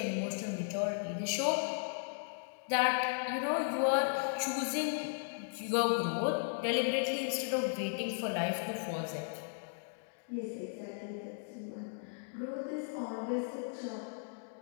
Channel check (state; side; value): silent; right; digital silence